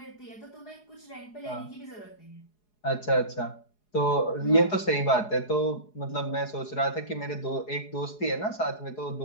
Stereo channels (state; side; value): late; right; 4.8 ms